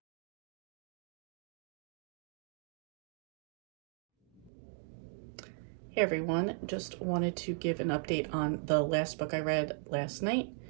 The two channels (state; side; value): drops out; left; at 4.5 s